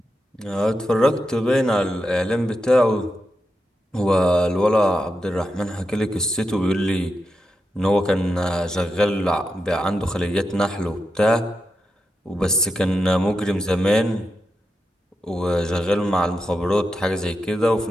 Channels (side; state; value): both; normal; correlation 0.87